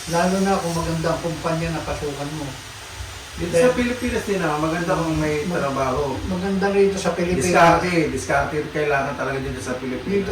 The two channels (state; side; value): identical; both; correlation 1.00